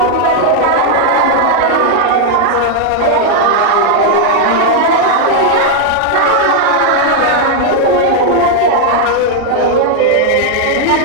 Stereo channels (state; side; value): different; both; correlation 0.00